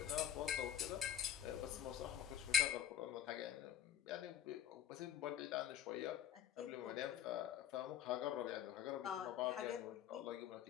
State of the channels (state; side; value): quieter; right; 9.9 dB